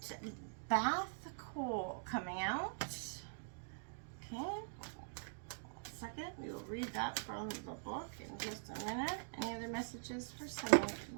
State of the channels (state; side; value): silent; left; digital silence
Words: Bath Coal coming out. Okay, 1 second. We will read that from the book in just a minute. Any other messages for someone?